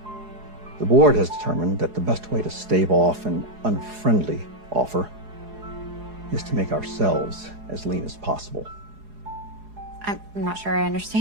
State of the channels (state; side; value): late; left; 4.8 ms